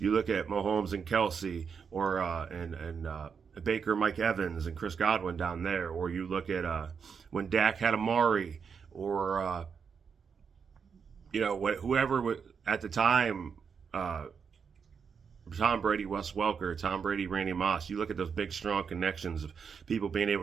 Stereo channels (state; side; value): quieter; left; 6.3 dB